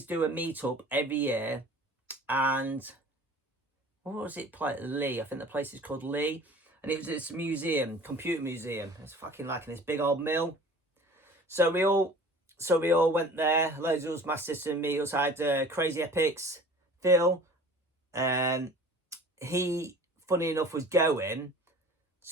do a meetup every year. And what was it? Lee. I think the place is called Lee. And it was this museum, computer museum. It's fucking like in this big old mill. So we all went there. Loads of us Master System meetups. I had Crazy Epics, Phil. He, funny enough, was going.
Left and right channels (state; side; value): normal; both; correlation 0.44